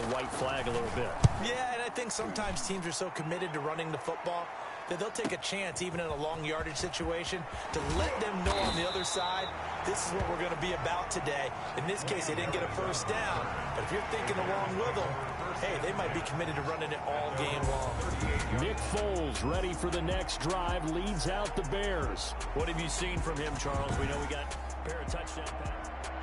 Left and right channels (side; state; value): both; identical; correlation 1.00